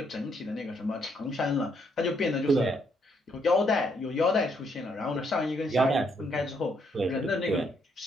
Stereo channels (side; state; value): both; normal; correlation 0.73